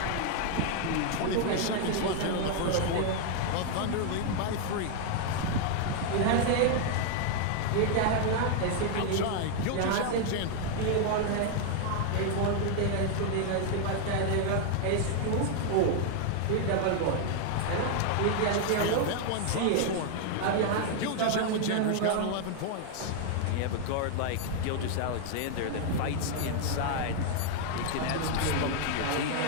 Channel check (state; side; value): different; both; correlation 0.00